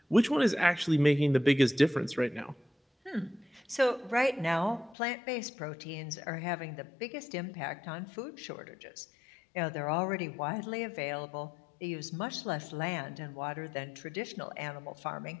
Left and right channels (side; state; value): right; drops out; at 5.0 s